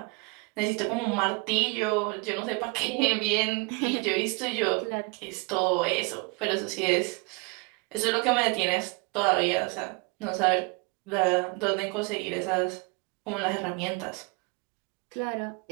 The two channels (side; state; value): left; quieter; 30.1 dB